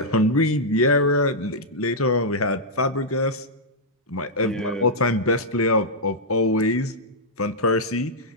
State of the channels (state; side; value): normal; both; correlation -0.07